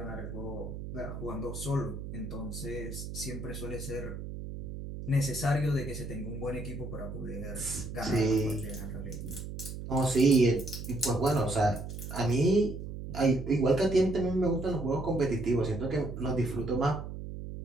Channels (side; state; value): right; noise; hum, 8 dB below the sound